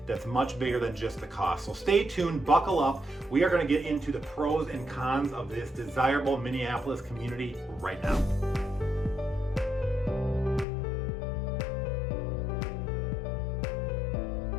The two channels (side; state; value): right; drops out; at 10.7 s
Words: that's much bigger than just the cost. So stay tuned, buckle up. We are going to get into the pros and cons of this desirable Minneapolis community right now.